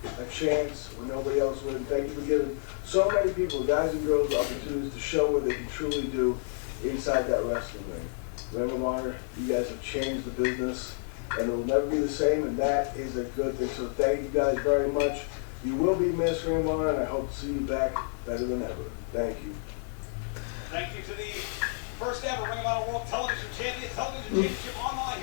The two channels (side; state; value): right; silent; digital silence